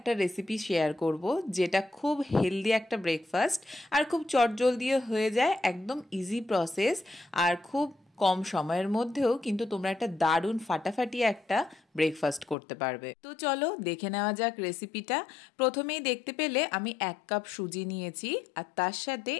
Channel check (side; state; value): right; drops out; at 12.6 s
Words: রেসিপি শেয়ার করব, যেটা খুব হেলদি একটা ব্রেকফাস্ট আর খুব চটজলদিও হয়ে যায়, একদম ইজি প্রসেস আর খুব কম সময়ের মধ্যেও কিন্তু তোমরা একটা দারুণ ফাটাফাটি একটা ব্রেকফাস্ট করতে পারবে। তো চলো দেখে নেওয়া যাক রেসিপিটা। প্রথমেই দেখতে পেলে আমি 1 কাপ সুজি নিয়েছি আর তার সাথে